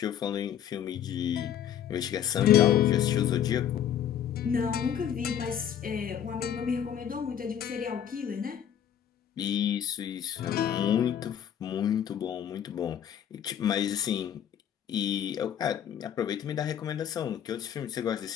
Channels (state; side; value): quieter; right; 9.5 dB